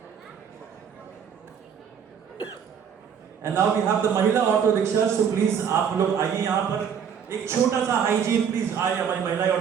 And now we have the Mahila auto rickshaws, so please आप लोग आइए यहाँ पर एक छोटा सा hygiene please आए हमारी महिला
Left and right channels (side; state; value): left; quieter; 7.6 dB